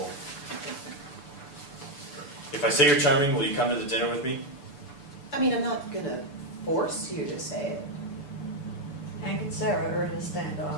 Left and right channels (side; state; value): right; late; 6.9 ms